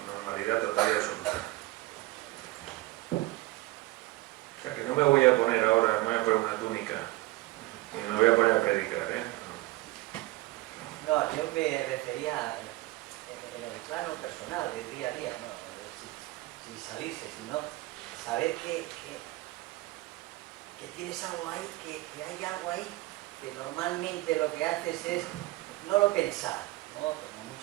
normalidad total y absoluta. O sea que no me voy a poner ahora, no me voy a poner una túnica y me voy a poner a predicar, ¿eh? No, yo me refería en el plano personal, del día a día, ¿no? Sin salirse, sino saber que tienes algo ahí, que hay algo ahí, que normalmente lo que haces es no lo pensar, ¿no? Como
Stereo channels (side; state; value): left; quieter; 19.7 dB